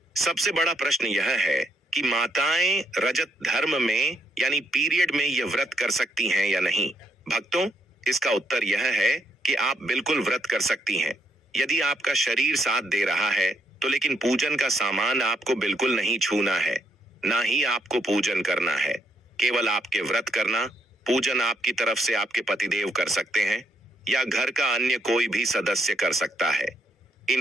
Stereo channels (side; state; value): both; normal; correlation 0.74